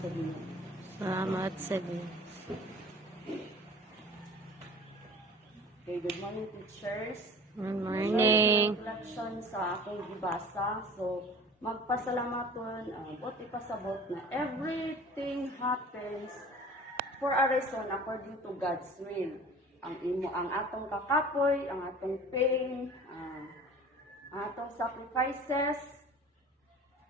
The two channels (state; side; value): normal; both; correlation 0.43